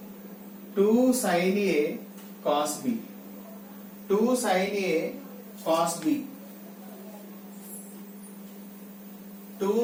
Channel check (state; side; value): identical; both; correlation 1.00